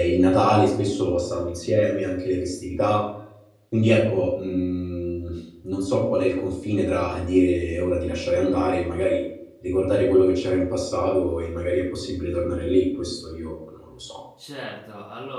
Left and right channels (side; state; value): both; identical; correlation 1.00